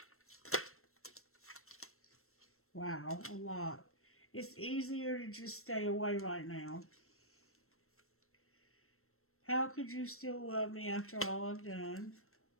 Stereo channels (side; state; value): right; late; 0.63 ms